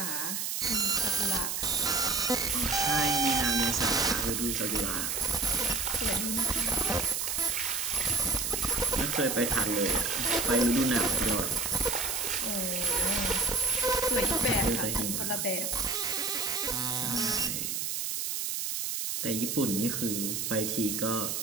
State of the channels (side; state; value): right; noise; hiss, 2 dB below the sound